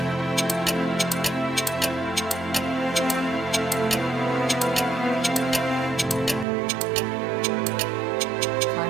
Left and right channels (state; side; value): drops out; left; at 6.5 s